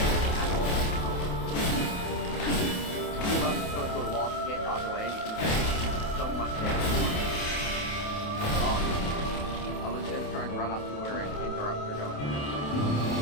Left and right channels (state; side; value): late; right; 28 ms